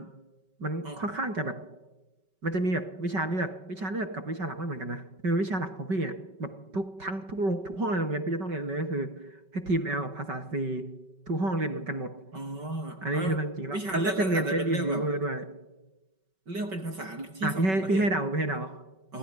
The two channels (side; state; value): left; late; 5.3 ms